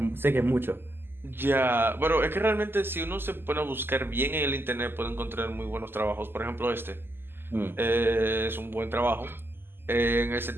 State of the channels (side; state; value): left; late; 0.10 ms